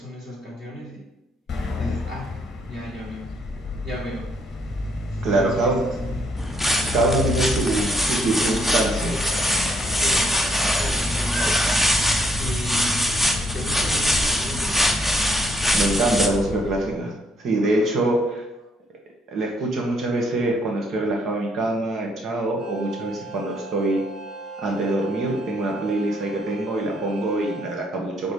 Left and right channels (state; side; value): normal; both; correlation 0.70